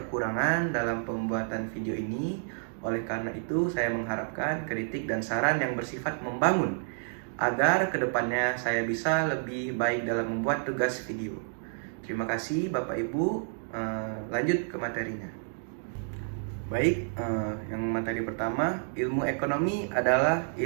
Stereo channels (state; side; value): silent; left; digital silence